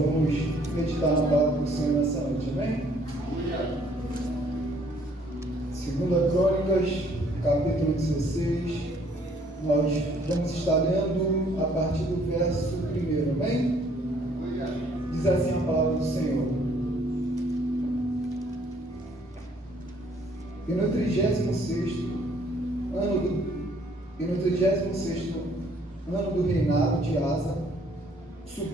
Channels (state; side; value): normal; both; correlation 0.62